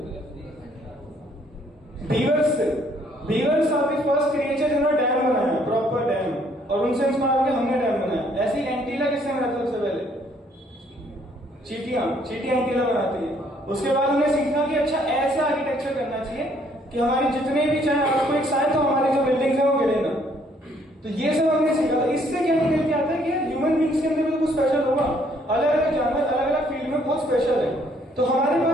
बीवर्स से। Beavers are the first creature जिन्होंने डैम बनाया, प्रॉपर डैम, और उनसे इंस्पायर होकर हमने डैम बनाया। ऐसी एंटीला किसने बनाया सबसे पहले? चींटियां एंटीला बनाती है। उसके बाद हमने सीखा कि अच्छा ऐसा आर्किटेक्चर करना चाहिए कि हमारे जितने भी चाहे आपको एक साइड तो हमारी जो बिल्डिंग्स है वो गिरे ना। तो ये सब हमने सीखा था। इससे क्या निकल के आता है कि ह्यूमन बींग्स के अंदर भी तो कुछ स्पेशल होगा। अलग अलग जानवर अलग अलग फील्ड में बहुत स्पेशल है, तो हमारे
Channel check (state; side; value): normal; both; correlation 0.65